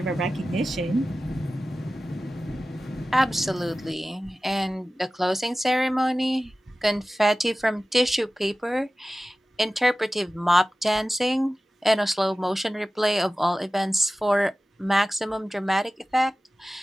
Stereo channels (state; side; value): normal; both; correlation 0.96